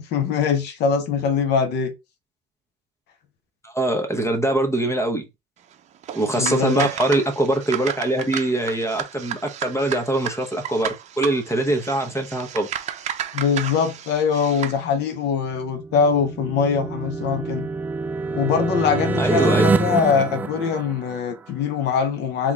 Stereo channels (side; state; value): both; normal; correlation 0.34